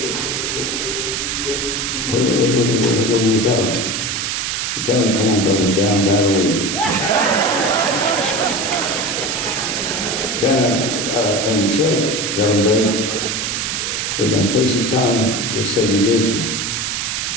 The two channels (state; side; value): noise; right; hiss, 1 dB below the sound